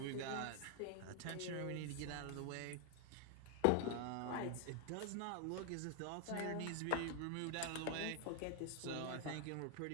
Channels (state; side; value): different; both; correlation 0.00